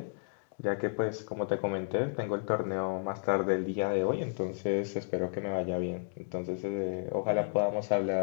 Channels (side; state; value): right; silent; digital silence